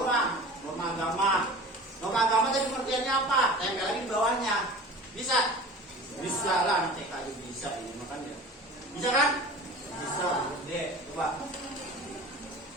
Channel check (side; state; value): both; normal; correlation 0.39